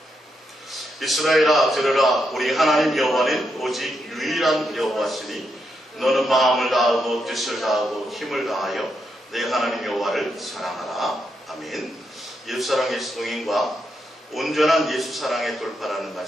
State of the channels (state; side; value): normal; both; correlation 0.82